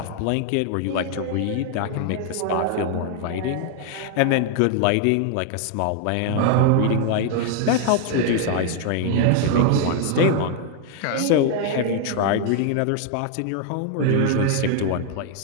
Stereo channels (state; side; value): different; both; correlation 0.00